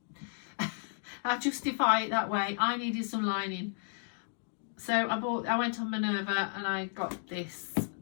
I justify it that way. I needed some lining. So I went on Minerva and I got this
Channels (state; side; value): silent; right; digital silence